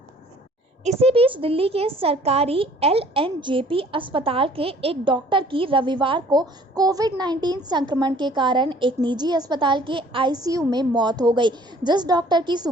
इसी बीच दिल्ली के सरकारी LNJP अस्पताल के एक डॉक्टर की रविवार को कोविड-19 संक्रमण के कारण एक निजी अस्पताल के ICU में मौत हो गई। जिस डॉक्टर की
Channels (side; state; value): both; normal; correlation 0.55